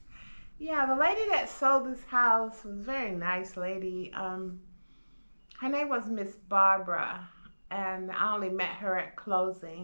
Yeah, the lady that sold this house was a very nice lady. Her name was Miss Barbara, and I only met her at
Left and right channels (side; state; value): both; inverted; correlation -1.00